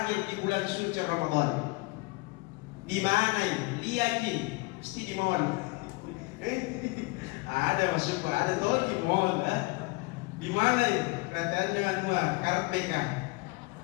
di bulan suci Ramadan. Di mana ini? Lihatin, mesti di mall. Ada masuk, ada tol di mall. Di mana ini? Katanya Karpeka.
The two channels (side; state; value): right; quieter; 25.8 dB